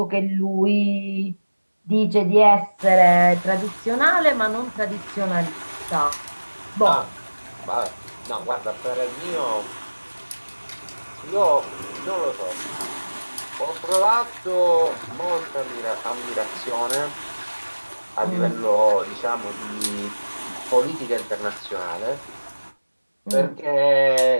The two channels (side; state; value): both; inverted; correlation -1.00